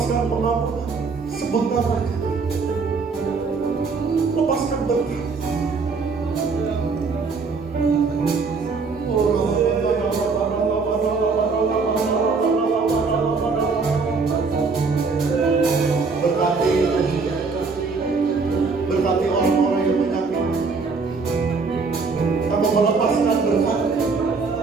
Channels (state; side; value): quieter; left; 4.6 dB